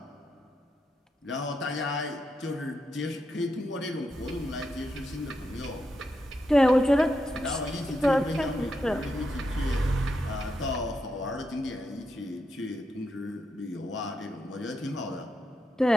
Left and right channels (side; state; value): both; normal; correlation 0.84